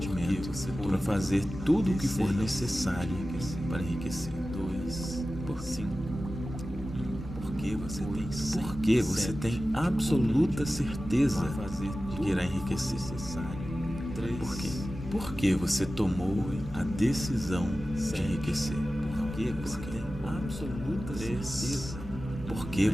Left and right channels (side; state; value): both; normal; correlation 0.95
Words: para fazer tudo o que for necessário para enriquecer. 2, por 5. Porque você tem absoluta certeza de que irá enriquecer. 3. Por quê? Porque você tomou a decisão de enriquecer. Porque você tem absoluta certeza. Porque